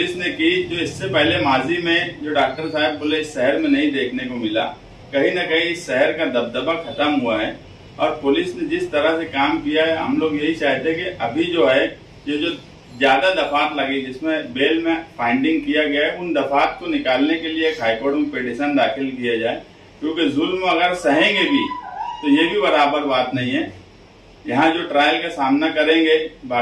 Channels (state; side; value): identical; both; correlation 1.00